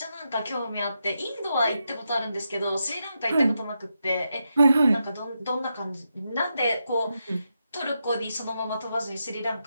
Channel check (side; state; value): both; inverted; correlation -0.85